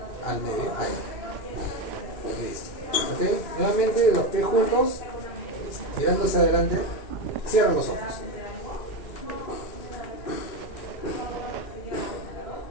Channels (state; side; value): late; right; 2.9 ms